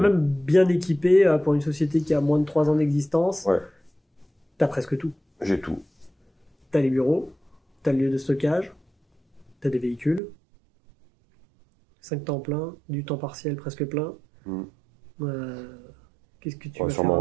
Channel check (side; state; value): left; drops out; at 10.2 s